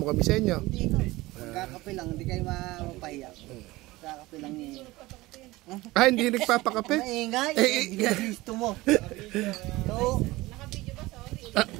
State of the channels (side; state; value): left; quieter; 19.7 dB